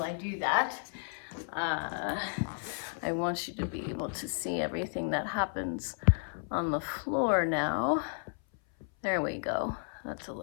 I do that. I want you to be able to see everything that happens on the floor now. There we go. That's a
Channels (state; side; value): silent; right; 56 dB below the other